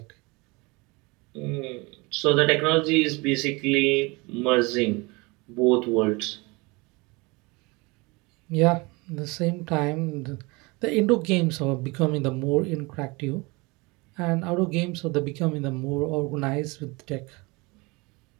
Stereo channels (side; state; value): left; quieter; 25.8 dB